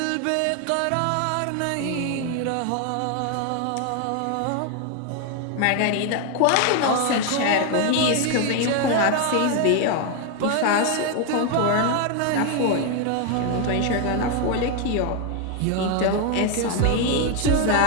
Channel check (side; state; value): both; different; correlation 0.01